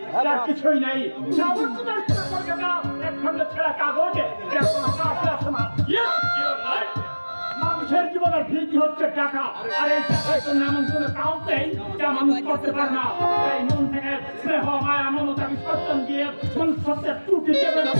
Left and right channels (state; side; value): inverted; both; correlation -1.00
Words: তার কিছুই নেই। একসঙ্গে ছেঁড়া কাগজে মানুষের জীবনের ভিত্তি হচ্ছে টাকা, আর এই টাকায় তো এমন কোনো কাউন্ট নেই যা মানুষ করতে পারে না। এই মন থেকে স্নেহ মায়া মমতা বিসর্জন দিয়ে মনুষ্যত্বের ত্রুটি দেবে না